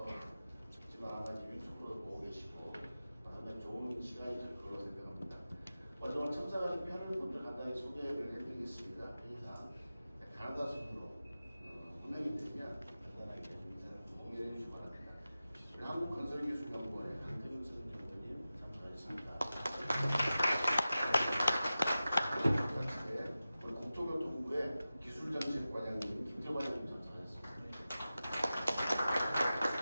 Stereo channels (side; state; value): both; inverted; correlation -0.94